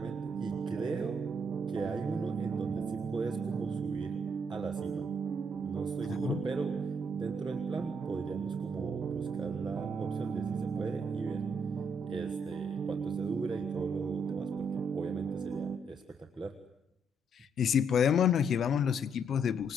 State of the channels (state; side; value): normal; both; correlation 0.73